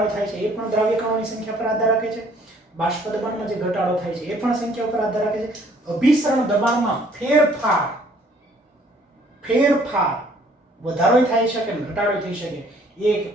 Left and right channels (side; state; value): both; normal; correlation 0.60